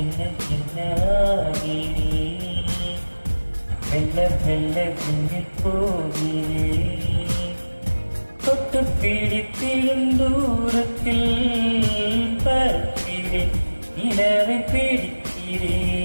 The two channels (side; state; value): both; inverted; correlation -1.00